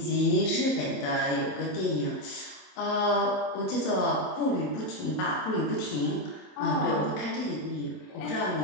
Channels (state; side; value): late; right; 27 ms